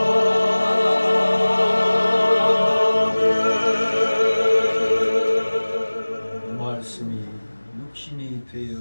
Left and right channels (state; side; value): inverted; both; correlation -1.00